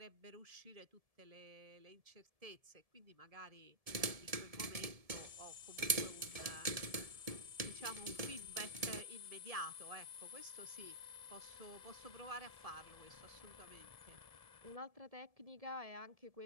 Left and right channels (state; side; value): late; left; 1.7 ms